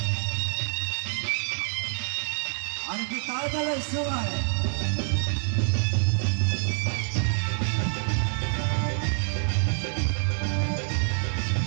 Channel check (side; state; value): left; silent; digital silence